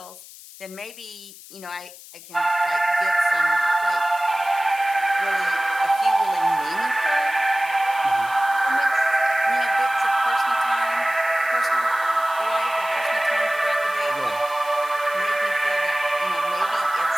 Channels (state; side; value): noise; left; hiss, 18 dB below the sound